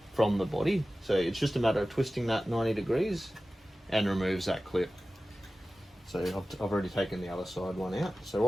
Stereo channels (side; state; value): both; normal; correlation 0.96